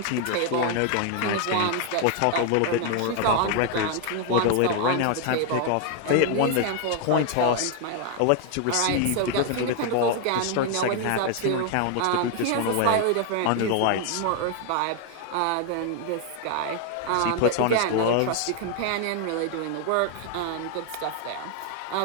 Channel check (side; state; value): both; different; correlation 0.00